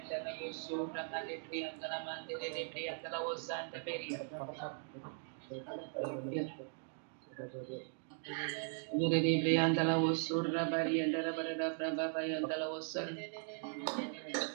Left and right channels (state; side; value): silent; left; 52 dB below the other